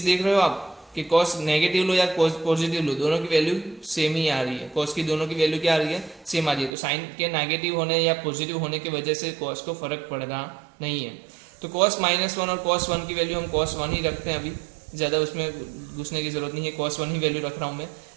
देख रहे हो आप कि cos नेगेटिव लो या cos पॉजिटिव लो, दोनों की वैल्यू सेम ही आ रही है। cos की दोनों की वैल्यू क्या आ रही है, सेम आ रही है। तो साइन के नेगेटिव होने या पॉजिटिव होने की वजह से cos को फर्क पड़ रहा नहीं है। तो cos -1 और cos 1 की वैल्यू हम cos 1 ही रखते हैं, अभी ज़्यादा उसमें घुसने की जरूरत नहीं है, cos 1 ही वैल्यू रख रहा हूँ मैं।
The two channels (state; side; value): drops out; left; at 6.7 s